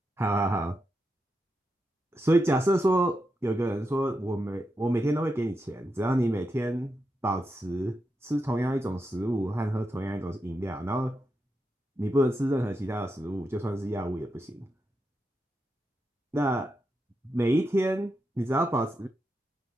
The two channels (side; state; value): both; normal; correlation 0.86